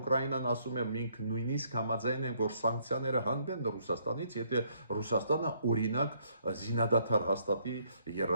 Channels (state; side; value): inverted; both; correlation -0.69